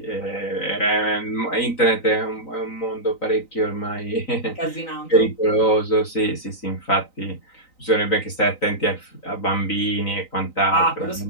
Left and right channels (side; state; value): right; late; 3.9 ms